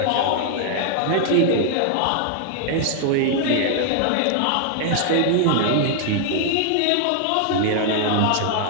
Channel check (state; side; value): different; both; correlation 0.00